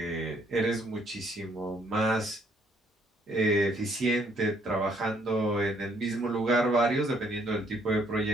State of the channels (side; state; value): both; normal; correlation 0.67